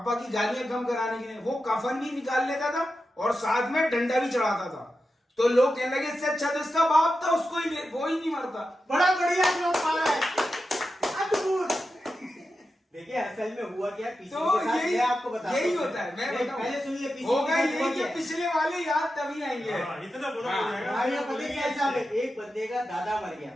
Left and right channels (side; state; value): both; normal; correlation 0.90